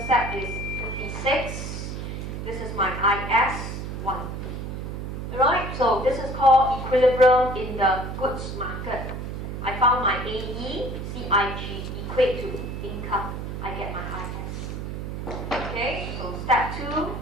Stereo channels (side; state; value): right; noise; hum, 6 dB below the sound